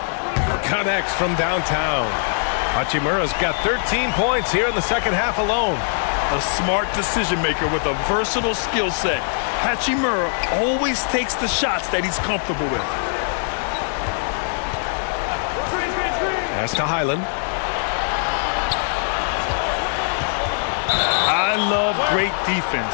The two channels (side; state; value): right; silent; digital silence